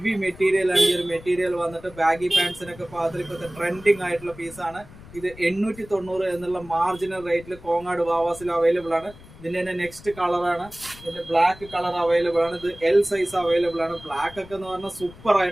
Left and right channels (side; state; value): left; noise; rumble, 19 dB below the sound